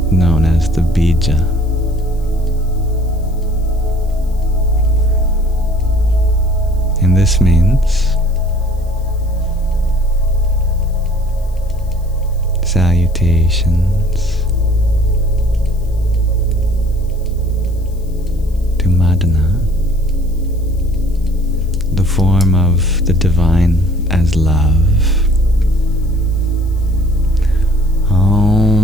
known as the bija. And this means salutations to Madana, the form of the divine as love.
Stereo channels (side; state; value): left; noise; hiss, 28 dB below the sound